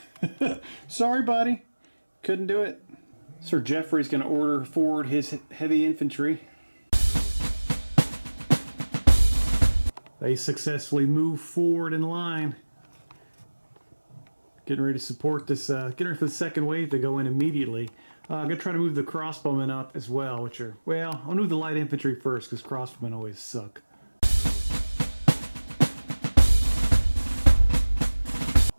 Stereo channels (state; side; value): inverted; both; correlation -1.00